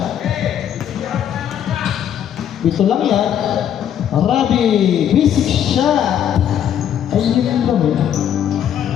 Ito lang yan. Robby, basic shot. Ayun yung kami.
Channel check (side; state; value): right; quieter; 9.7 dB